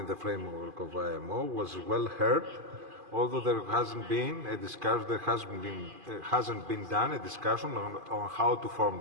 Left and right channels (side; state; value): left; late; 2.5 ms